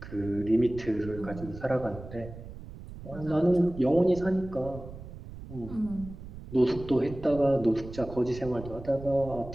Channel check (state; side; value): noise; right; rumble, 13 dB below the sound